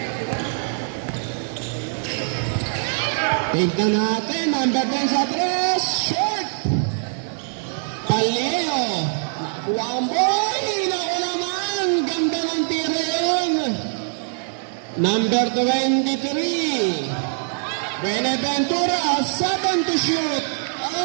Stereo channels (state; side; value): silent; left; digital silence